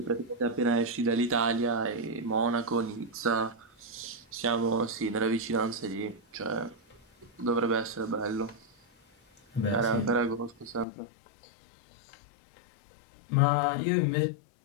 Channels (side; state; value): right; drops out; at 10.9 s